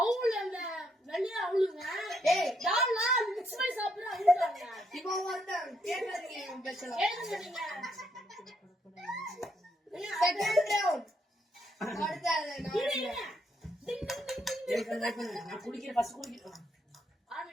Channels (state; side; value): normal; both; correlation 0.75